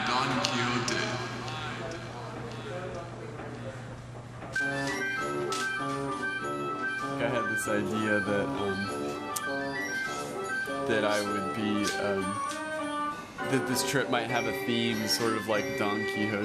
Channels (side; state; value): both; identical; correlation 1.00